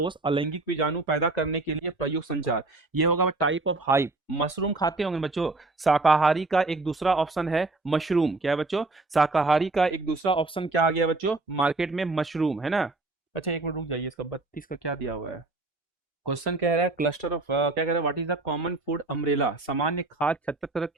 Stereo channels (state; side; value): quieter; left; 3.2 dB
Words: अलैंगिक बीजाणु पैदा करने के लिए प्रयुक्त संचार। ये होगा टाइप ऑफ हाइप। मशरूम खाते होंगे बच्चों। शाकाहारी का एक दूसरा ऑप्शन है मशरूम। क्या है बच्चों? शाकाहारी का एक दूसरा ऑप्शन क्या आ गया बच्चों मार्केट में? मशरूम, है ना। अच्छा एक मिनट रुक जाइए, इसका 32 का क्या दिया हुआ है? क्वेश्चन कह रहा है क्लस्टर ऑफ क्या कह रहा है? What is the common food umbrella? सामान्य खाद्य छत्र